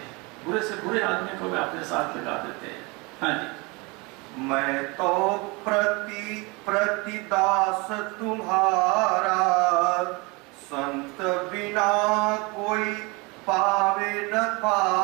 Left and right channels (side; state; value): left; quieter; 27.1 dB